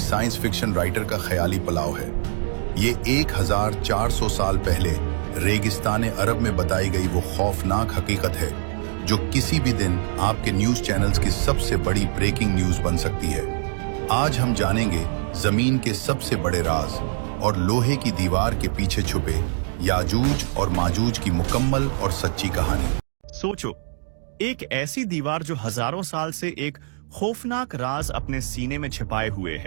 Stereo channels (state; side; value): silent; left; digital silence